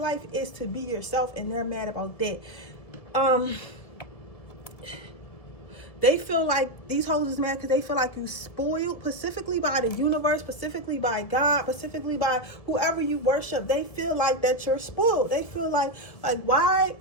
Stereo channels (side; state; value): right; late; 1.7 ms